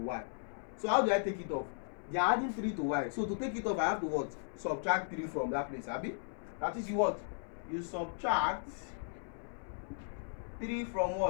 So how do I take it off? They are adding 3 to y. So to take it off, I have to what? Subtract 3 from that place. Abi? That is you what? You subtract 3 from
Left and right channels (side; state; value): right; silent; 53 dB below the other